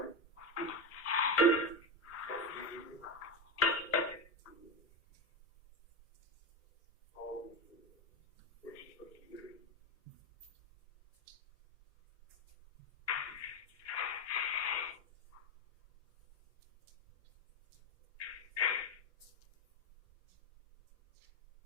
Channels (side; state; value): both; normal; correlation 0.14